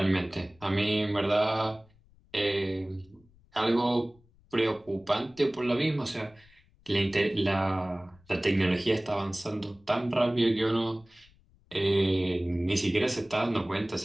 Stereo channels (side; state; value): left; noise; rumble, 30 dB below the sound